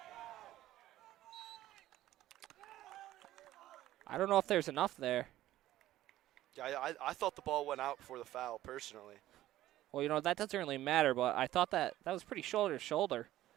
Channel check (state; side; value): quieter; left; 14.4 dB